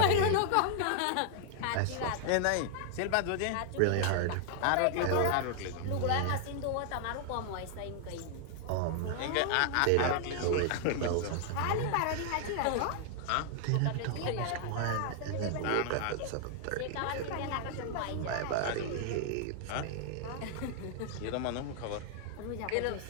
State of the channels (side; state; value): both; different; correlation 0.00